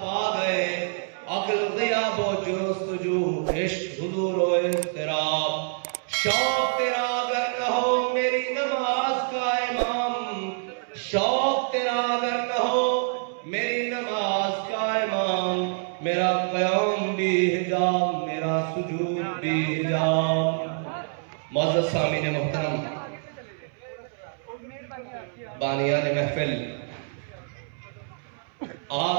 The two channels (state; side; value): silent; left; 61 dB below the other